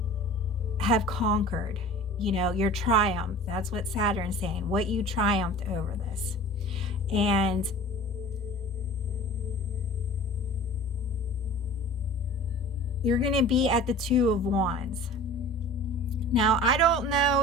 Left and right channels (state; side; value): normal; both; correlation 0.41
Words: conquered, you know, your triumph. That's what Saturn's saying, what you triumphed over this. And you're going to be at the Two of Wands. Now, I don't